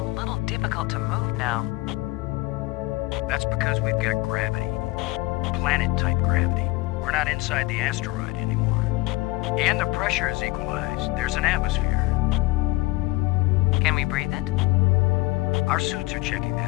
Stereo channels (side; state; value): right; quieter; 20.7 dB